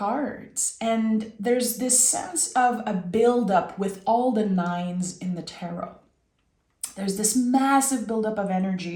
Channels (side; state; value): both; identical; correlation 1.00